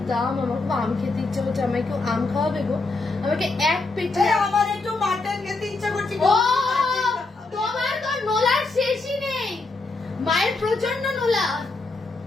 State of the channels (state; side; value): quieter; right; 3.5 dB